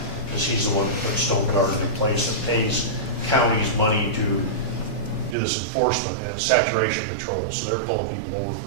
because he's the one that put Stone Garden in place and pays counties money to do this enforcement and saturation patrol. So they're pulling people over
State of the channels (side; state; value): left; drops out; at 5.4 s